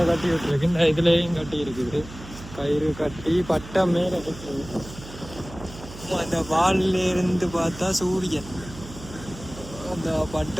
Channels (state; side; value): noise; right; hum, 15 dB below the sound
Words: கட்டி விட்டுருக்கு. இந்த இதுலேயும் கட்டி இருக்குது. கயிறு கட்டி பட்டம் மேலே இருக்குது. அந்த வாலிலிருந்து பார்த்தா சூரியன், அந்த